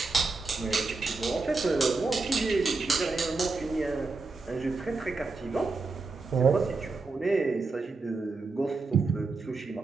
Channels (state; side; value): quieter; left; 3.9 dB